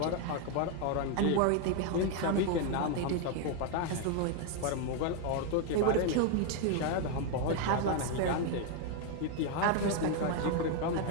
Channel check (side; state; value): both; different; correlation 0.01